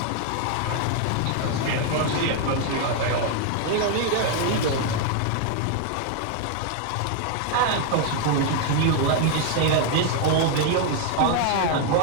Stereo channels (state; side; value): different; both; correlation 0.00